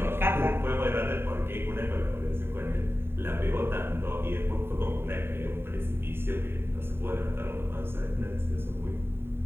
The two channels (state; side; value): late; left; 0.11 ms